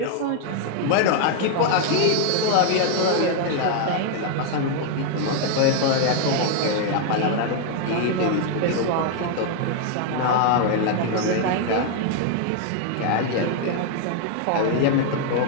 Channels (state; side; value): different; both; correlation 0.00